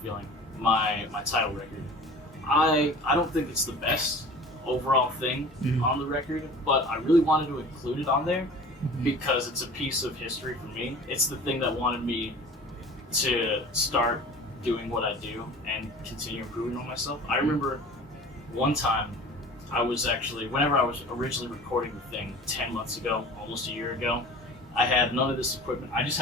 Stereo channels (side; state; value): both; normal; correlation 0.41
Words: Feeling, my title record. I don't think it's the best overall thing on the record, but I really wanted to include it on there because it's a piece of history for me. It's the thing that wanted me to start doing what I do and continue improving on myself. I remember one time I was actually, whenever I was originally recording the thing 10 months ago, almost a year ago, I had none of this equipment. I just